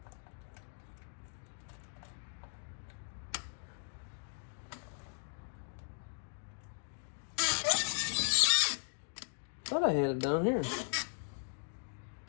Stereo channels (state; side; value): silent; right; digital silence